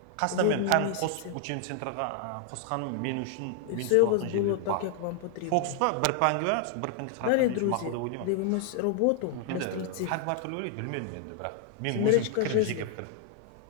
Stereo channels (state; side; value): different; both; correlation 0.00